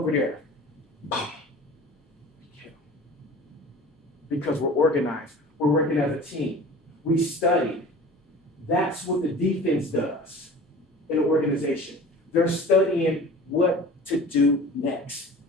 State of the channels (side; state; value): both; normal; correlation 0.40